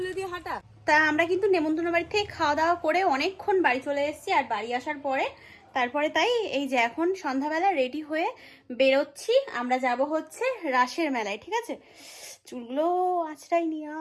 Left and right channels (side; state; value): both; identical; correlation 1.00